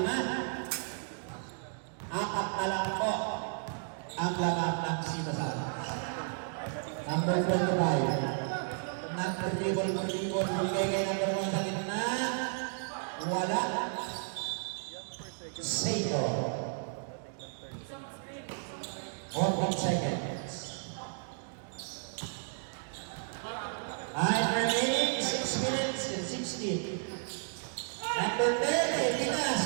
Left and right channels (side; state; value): left; silent; digital silence